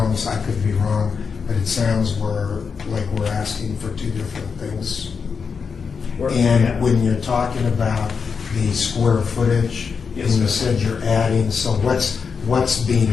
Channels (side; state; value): right; quieter; 5.7 dB